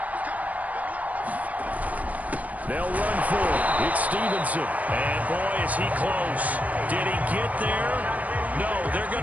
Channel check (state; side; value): late; left; 0.072 ms